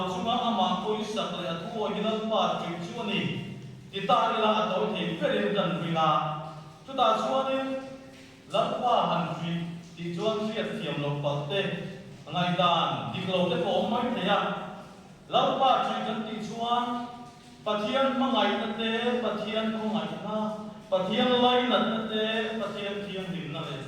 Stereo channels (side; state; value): both; identical; correlation 1.00